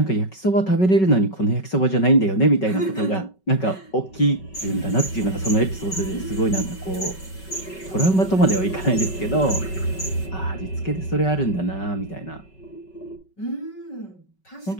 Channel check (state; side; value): late; right; 5.3 ms